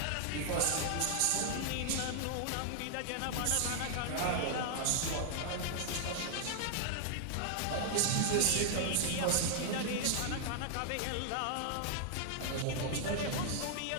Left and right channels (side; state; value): both; different; correlation 0.00